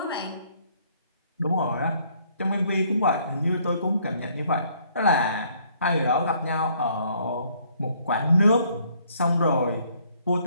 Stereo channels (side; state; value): both; inverted; correlation -0.65